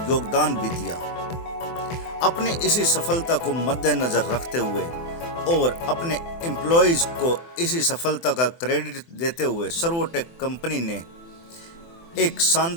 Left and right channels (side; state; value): right; late; 24 ms